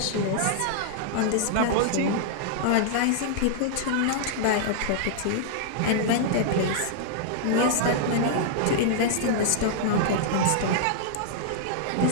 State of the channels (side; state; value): both; different; correlation -0.01